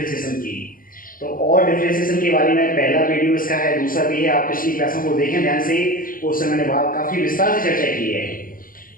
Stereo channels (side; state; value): right; late; 0.41 ms